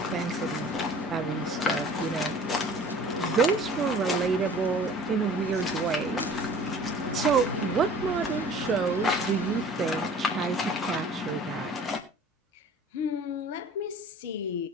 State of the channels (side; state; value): both; normal; correlation 0.46